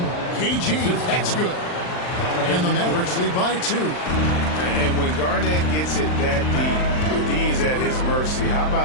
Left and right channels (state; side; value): late; right; 39 ms